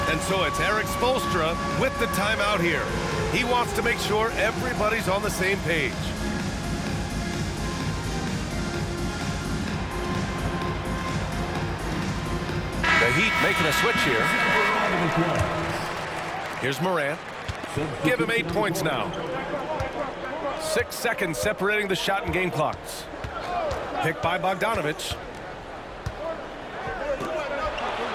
And so it's Eric Spoelstra with the timeout here. He wants to make sure everybody's on the same page. The Heat making a switch here. Here's Morant. Give him 8 points now. 6 seconds separating the shot and game clocks. Picked by Bogdanovich.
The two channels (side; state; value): both; identical; correlation 1.00